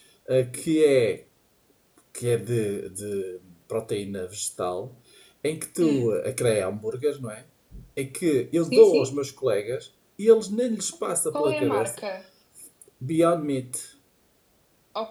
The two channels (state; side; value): identical; both; correlation 1.00